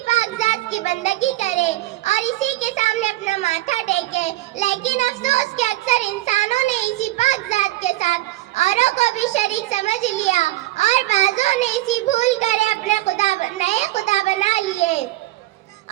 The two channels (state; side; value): quieter; left; 17.3 dB